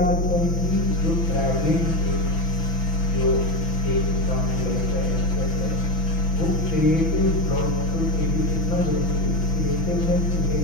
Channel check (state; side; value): late; right; 6.0 ms